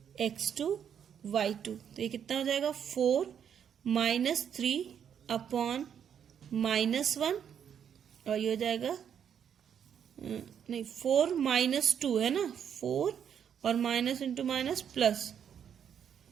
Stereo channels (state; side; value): quieter; left; 8.4 dB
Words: x2 y2। तो ये कितना हो जाएगा? 4 माइनस 3 अपॉन -1 और ये हो जाएगा नहीं 4 माइनस 2 है ना, 4 और माइनस इंटू माइनस प्लस,